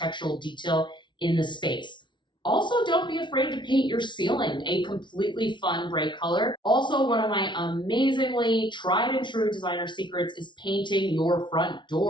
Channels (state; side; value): late; right; 0.23 ms